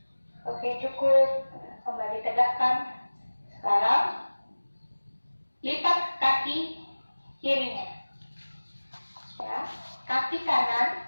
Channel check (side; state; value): both; inverted; correlation -1.00